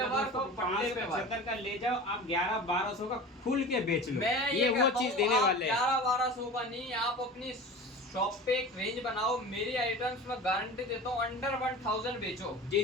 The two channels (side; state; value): both; normal; correlation 0.35